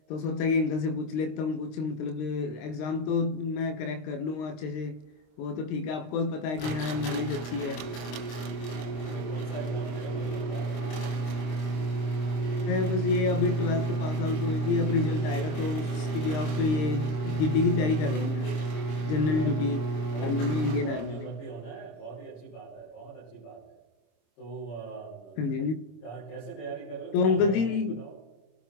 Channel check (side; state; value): right; late; 26 ms